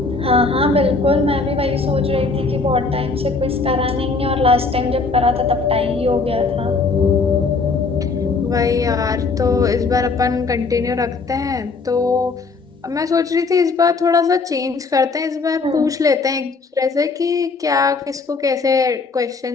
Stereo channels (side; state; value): right; quieter; 4.2 dB